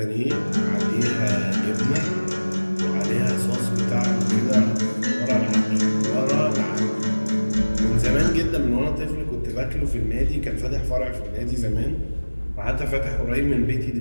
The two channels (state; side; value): inverted; both; correlation -1.00